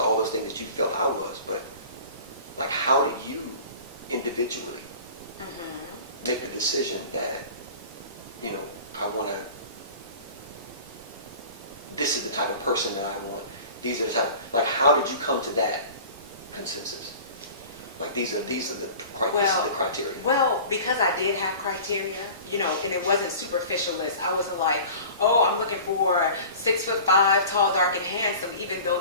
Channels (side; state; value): both; inverted; correlation -0.41